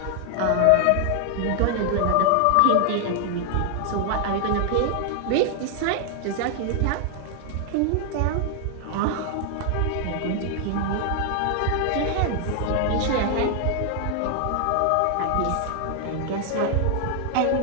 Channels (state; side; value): different; both; correlation 0.00